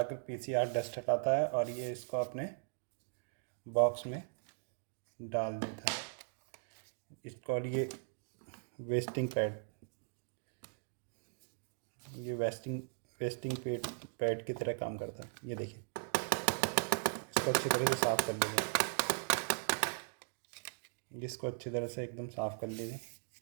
पीसीआर डस्ट हटाता है, और ये इसको अपने बॉक्स में डाल देता है। इसको, और ये वेस्टिंग पैड, ये वेस्टिंग पैड की तरह काम करता है। ये देखिए, इसको अच्छी तरह से साफ़ कर लीजिए। इसको अच्छी तरह से एकदम साफ़ कर लीजिए,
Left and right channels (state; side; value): silent; left; digital silence